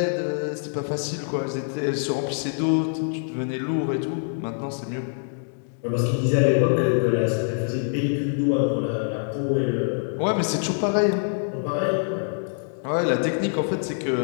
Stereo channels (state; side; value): silent; right; digital silence